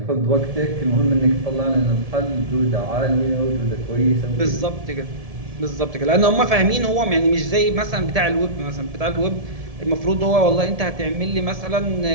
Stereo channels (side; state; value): left; late; 1.7 ms